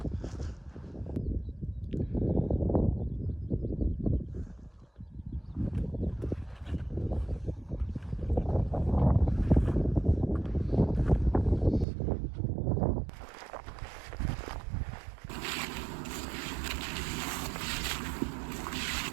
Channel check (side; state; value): left; drops out; at 11.9 s